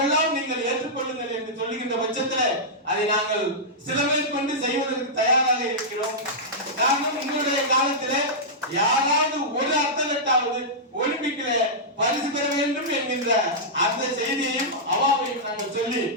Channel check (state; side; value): normal; both; correlation -0.12